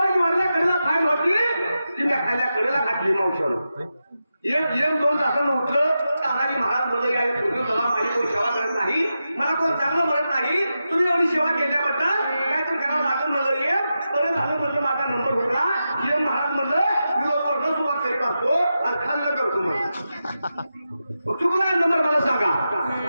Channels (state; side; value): inverted; both; correlation -0.90